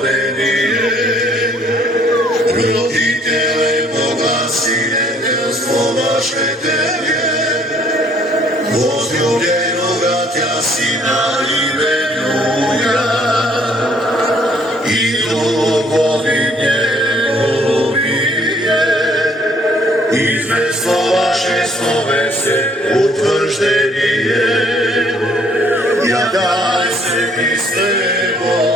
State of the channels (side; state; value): both; normal; correlation 0.62